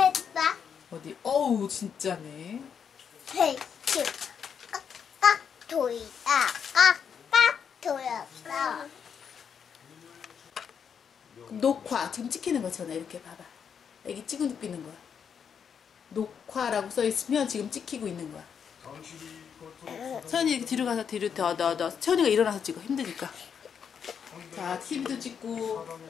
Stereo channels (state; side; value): quieter; right; 7.3 dB